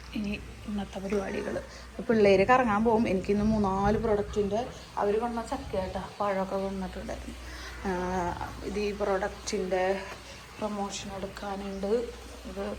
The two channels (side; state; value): both; identical; correlation 1.00